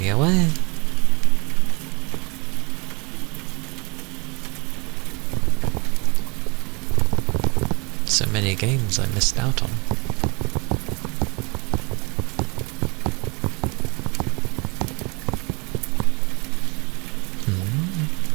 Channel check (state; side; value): quieter; left; 29.1 dB